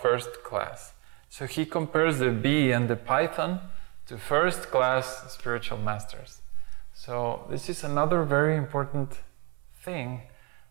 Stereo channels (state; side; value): quieter; left; 31.8 dB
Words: first class. So he compares the bee and the python to first class spiritual masters. So this is another very important thing